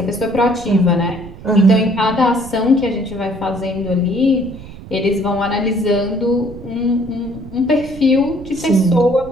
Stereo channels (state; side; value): noise; right; rumble, 15 dB below the sound